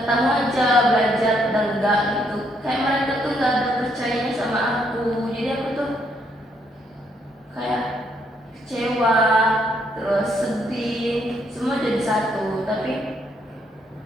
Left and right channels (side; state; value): both; normal; correlation 0.73